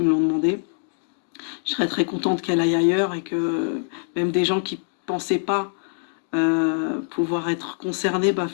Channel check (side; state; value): right; silent; digital silence